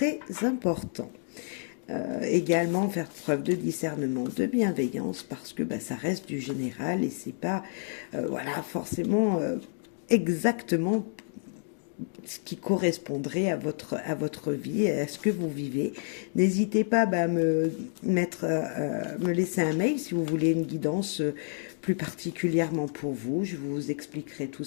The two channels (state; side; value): silent; right; digital silence